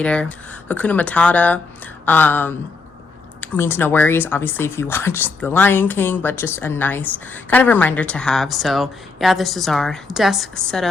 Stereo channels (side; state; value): right; quieter; 4.0 dB